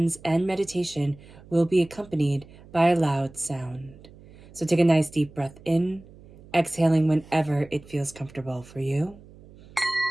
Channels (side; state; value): right; noise; hum, 22 dB below the sound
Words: and meditation will be accompanied by a loud sound. So take a nice deep breath in, exhaling whenever it feels comfortable for you.